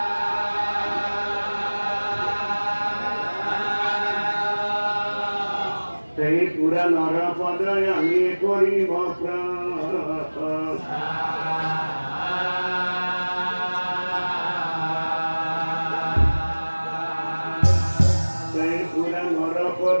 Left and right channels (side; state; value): both; inverted; correlation -1.00